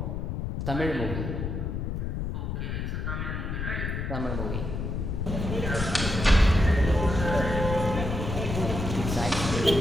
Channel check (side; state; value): left; noise; rumble, 3 dB below the sound